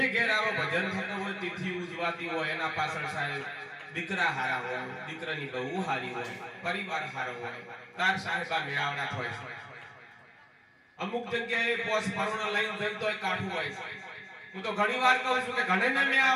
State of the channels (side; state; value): both; identical; correlation 1.00